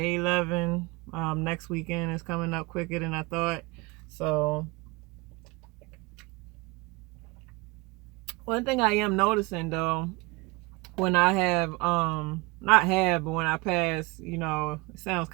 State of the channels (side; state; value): left; quieter; 25.2 dB